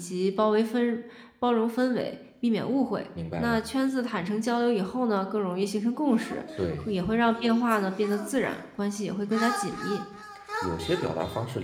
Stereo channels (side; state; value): both; identical; correlation 1.00